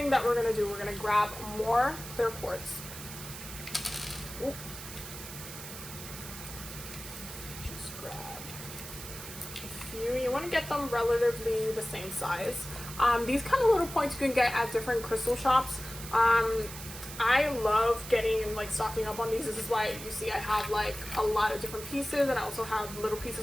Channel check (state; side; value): noise; right; hiss, 11 dB below the sound